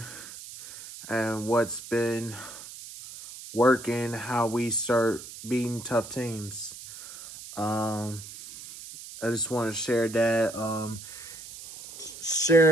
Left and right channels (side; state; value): right; noise; hiss, 14 dB below the sound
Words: and what's been working, how we start beating tough teams. Um, I just want to share that.